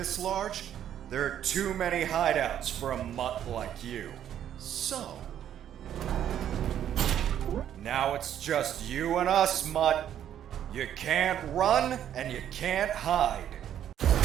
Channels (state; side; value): quieter; left; 10.3 dB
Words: large? There are too many hideouts for a mutt like you. So... now it's just you and us, mutt. You can't run, and you can't hide.